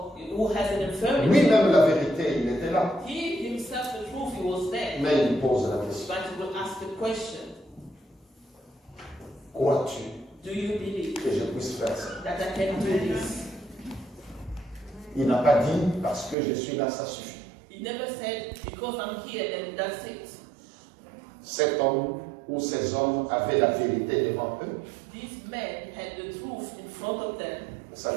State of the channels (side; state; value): left; drops out; at 16.4 s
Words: who has an infirmity. Lui-même la vérité, il était là. He himself, the truth, he was there. Mais il pose la question. But he will ask the question, Crois-tu do you believe que je puisse faire ça? that I can do this? Il n'a pas dit parce que je suis là, ça suffit. He never said, because I'm here and that's it. cet homme ou ces hommes avaient la vérité devant eux, These men had the truth in front of them, ça